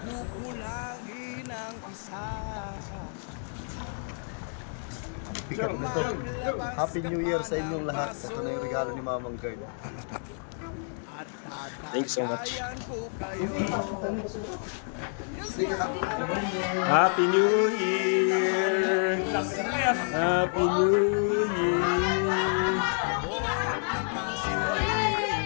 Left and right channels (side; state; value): right; silent; 59 dB below the other